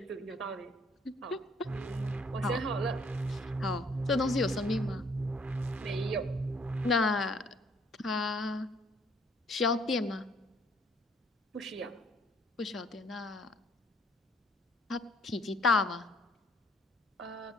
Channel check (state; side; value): normal; both; correlation 0.63